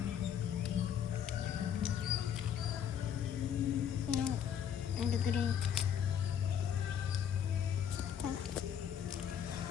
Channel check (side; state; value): right; quieter; 8.8 dB